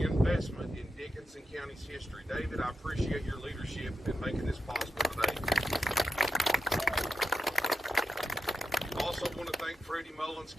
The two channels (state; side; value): normal; both; correlation 0.87